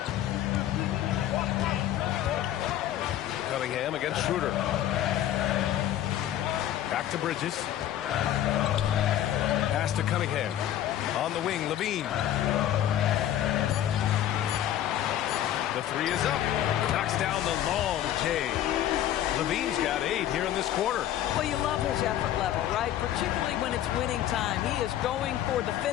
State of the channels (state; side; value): quieter; right; 11.9 dB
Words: Cunningham against Schroeder. Back to Bridges. Pass to Cunningham. On the wing, Levine. The 3 is up. Knocks down the long J. Levine's got 8 here in this quarter. Well, you love his effort level, right? Particularly when it's winning time. He is going for the